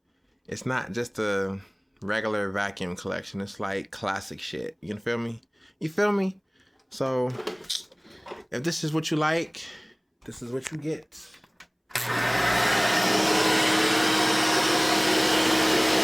it's not just a regular vacuum collection. It's like classic shit. You feel me? You feel me? So if this is what you like, this is what you get.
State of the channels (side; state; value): both; identical; correlation 1.00